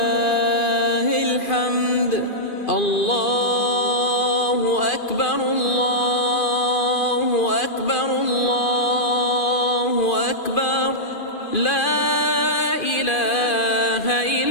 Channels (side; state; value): right; late; 2.4 ms